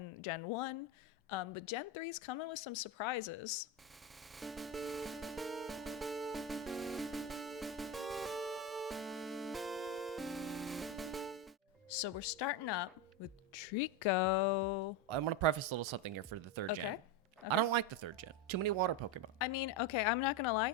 Gen 1. But Gen 3 is coming with some surprises. So we're starting up with Trico. I'm going to preface a little something here for the third gen. Okay. I don't like the third gen. Too many water Pokemon. I mean, okay, I'm not gonna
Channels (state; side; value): normal; both; correlation 0.14